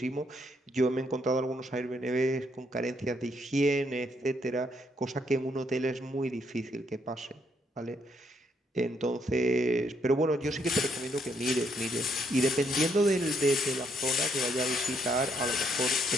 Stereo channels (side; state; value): both; normal; correlation 0.72